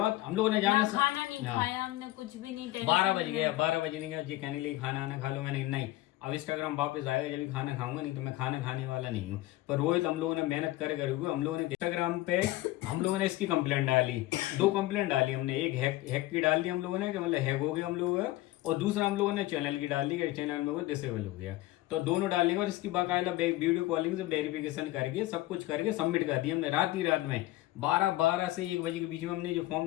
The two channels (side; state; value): right; quieter; 17.3 dB